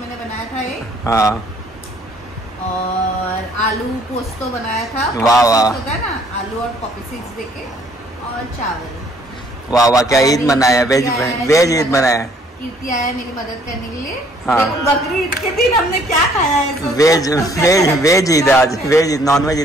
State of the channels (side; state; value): both; normal; correlation 0.62